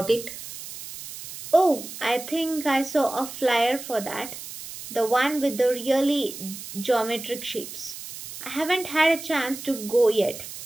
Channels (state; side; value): noise; right; hiss, 11 dB below the sound